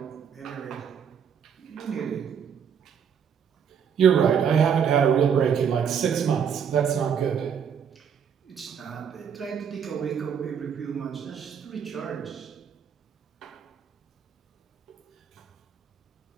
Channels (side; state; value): left; quieter; 7.5 dB